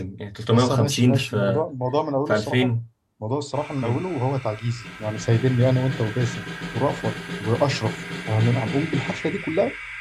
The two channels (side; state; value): both; identical; correlation 1.00